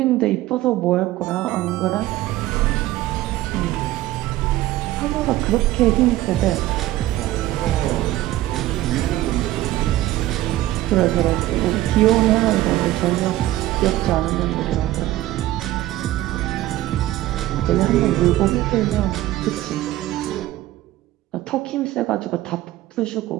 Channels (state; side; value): quieter; left; 15.6 dB